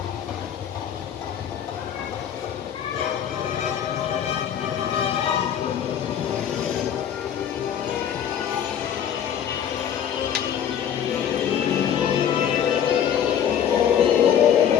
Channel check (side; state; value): right; quieter; 9.1 dB